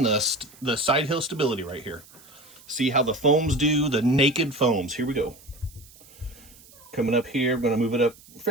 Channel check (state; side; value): noise; right; hiss, 24 dB below the sound